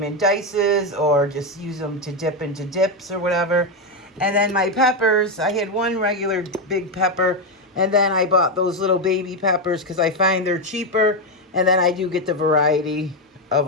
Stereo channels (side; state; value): both; normal; correlation 0.07